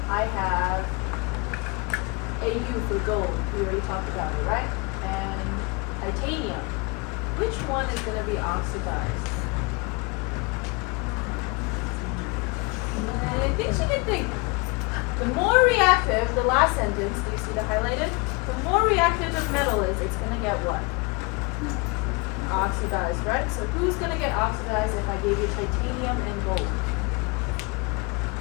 I have AU for gold. We already talked about it, right? And titanium. Which one is going to be oxidized? I think she can think. The more reactive, the last sentence, do you see the highlighted? The more reactive the metal is, it's going to get what? Oxidized, right? So who's going to get oxidized if I gave you titanium and gold?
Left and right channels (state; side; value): quieter; right; 27.8 dB